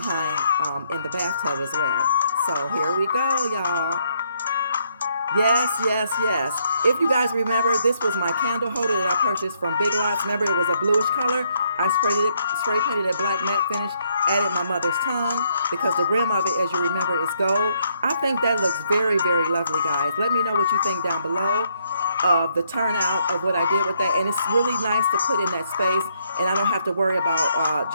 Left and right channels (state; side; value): inverted; both; correlation -0.72